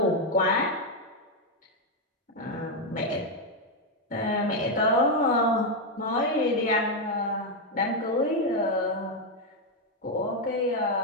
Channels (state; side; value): normal; both; correlation 0.03